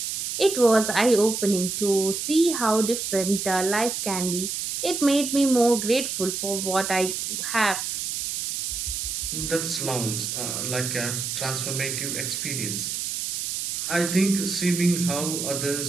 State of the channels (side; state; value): right; noise; hiss, 3 dB below the sound